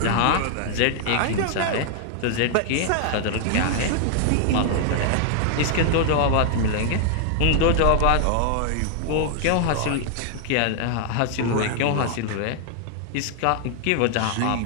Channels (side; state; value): both; different; correlation 0.00